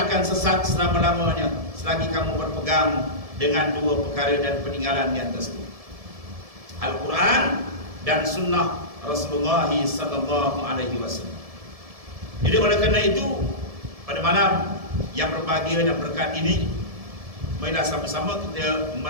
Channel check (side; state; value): left; late; 1.7 ms